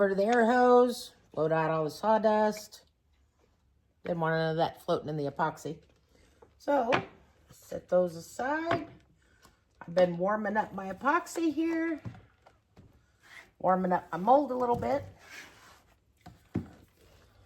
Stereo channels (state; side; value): identical; both; correlation 1.00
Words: to the air hose, blowed out all the sawdust. Didn't want none of that floating in the epoxy. So set those aside. I've been warming up my epoxy here. Warming up my mold a little bit.